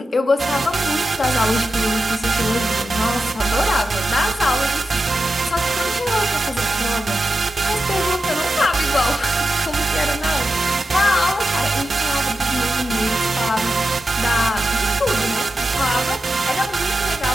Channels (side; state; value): both; normal; correlation 0.90